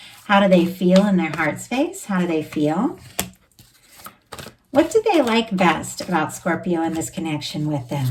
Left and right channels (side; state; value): both; identical; correlation 1.00